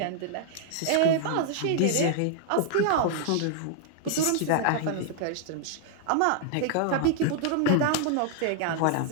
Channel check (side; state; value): both; different; correlation -0.01